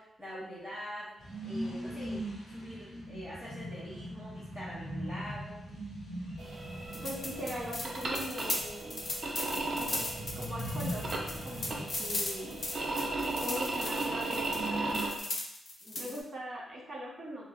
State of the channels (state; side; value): normal; both; correlation 0.82